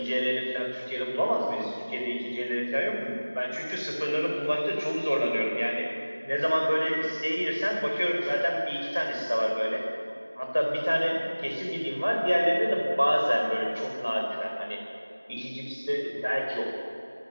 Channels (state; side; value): inverted; both; correlation -1.00